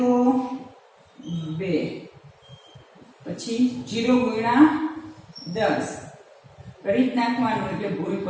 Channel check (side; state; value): both; identical; correlation 1.00